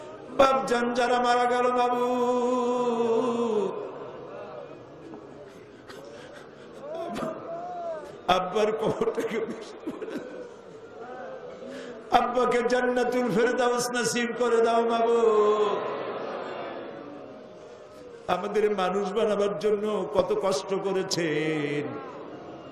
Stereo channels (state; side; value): identical; both; correlation 1.00